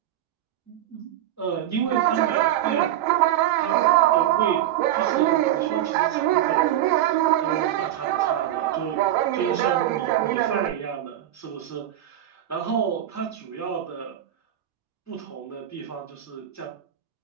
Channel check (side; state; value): left; quieter; 12.4 dB